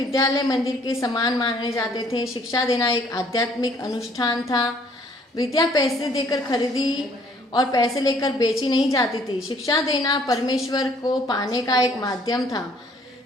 मंदिर के समान माने जाते थे। शिक्षा देना एक आध्यात्मिक अनुष्ठान था। विद्या पैसे देकर खरीदी और पैसे लेकर बेची नहीं जाती थी। शिक्षा देना परमेश्वर को पाने का एक माध्यम था।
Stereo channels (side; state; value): both; normal; correlation 0.61